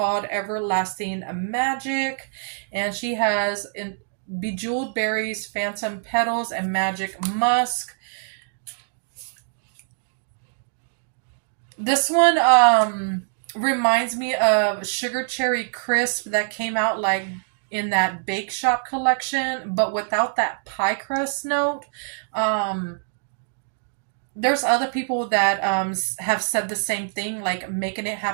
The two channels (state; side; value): silent; left; digital silence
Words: Everlasting Magic, and she has bejeweled berries, phantom petals, and magic musk. This one reminds me of Sugar Cherry Crisp that came out like in that Bake Shop collection, but without that pie crust note. Um, there's other people that have said the same thing, like Making It